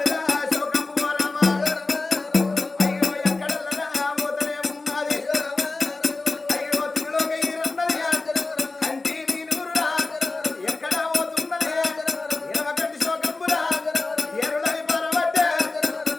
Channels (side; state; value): right; quieter; 3.5 dB